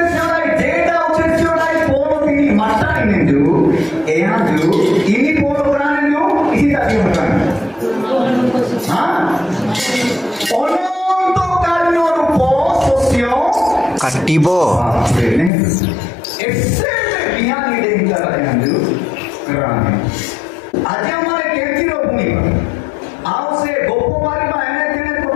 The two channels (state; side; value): drops out; right; at 15.5 s